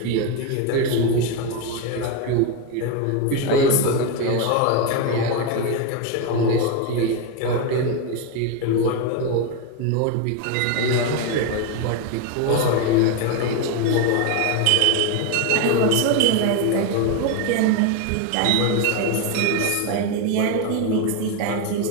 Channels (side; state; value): both; different; correlation 0.02